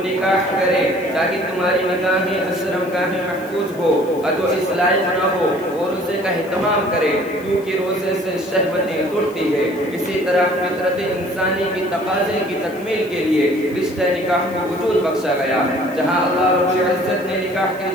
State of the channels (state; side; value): noise; left; hiss, 24 dB below the sound